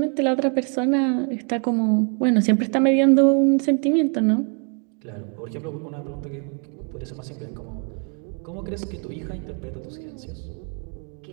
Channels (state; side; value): quieter; left; 39.3 dB